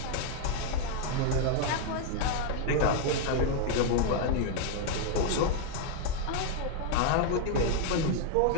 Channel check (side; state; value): both; different; correlation 0.00